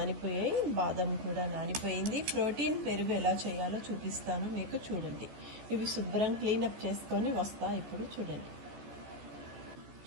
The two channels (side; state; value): left; late; 14 ms